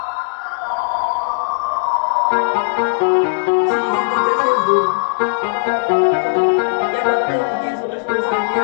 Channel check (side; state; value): right; quieter; 34.4 dB